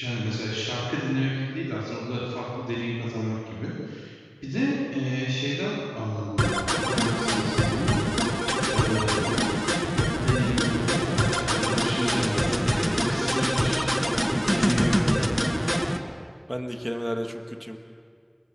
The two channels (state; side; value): identical; both; correlation 1.00